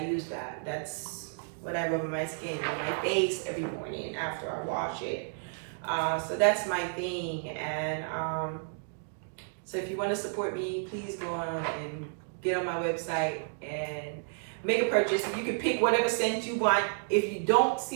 use that. That's what I rub on my skin, on my face every morning after I wash it. So that's my thing. And so if you want to support me, please go on and get on my website and make a purchase. You can pick whatever scent you want. If you don't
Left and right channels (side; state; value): left; silent; digital silence